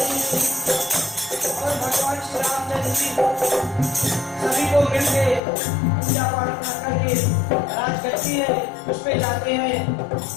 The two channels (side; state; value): right; drops out; at 5.4 s